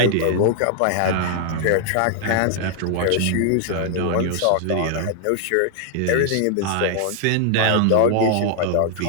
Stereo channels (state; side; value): different; both; correlation -0.01